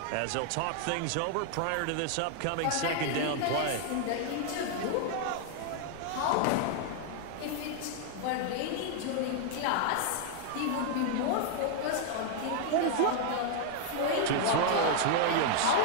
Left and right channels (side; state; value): both; different; correlation 0.00